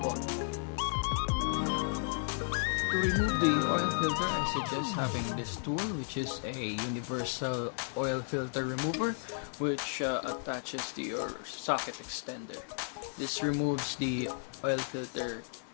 To remove the oil filter, I suggest having this tool, which is a universal oil filter remover, which attaches to your socket extender. This removes the oil filter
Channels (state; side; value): silent; right; digital silence